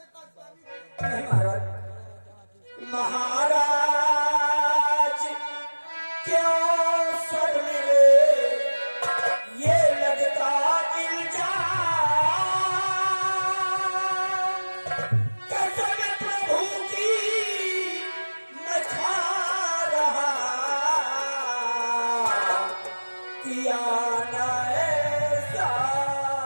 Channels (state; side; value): inverted; both; correlation -1.00